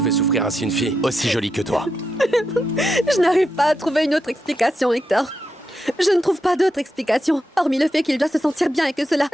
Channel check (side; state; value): both; normal; correlation 0.85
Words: fait souffrir ainsi une fille aussi jolie que toi. Je n'arrive pas à trouver une autre explication, Hector. Je ne trouve pas d'autre explication, hormis le fait qu'il doit se sentir bien et que cela